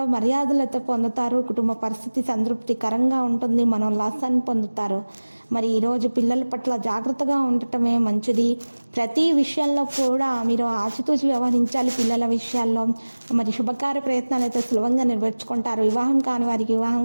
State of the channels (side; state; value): both; inverted; correlation -1.00